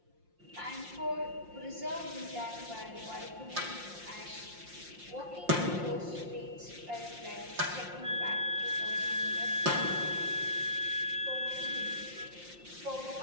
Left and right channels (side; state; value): left; late; 5.7 ms